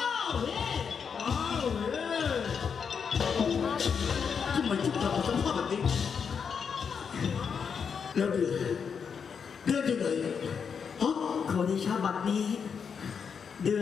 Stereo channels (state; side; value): quieter; right; 6.5 dB